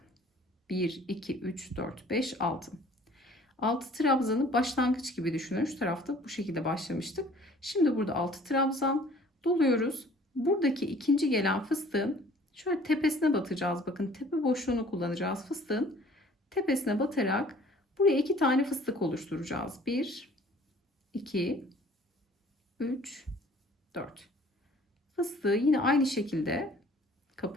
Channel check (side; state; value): both; normal; correlation 0.53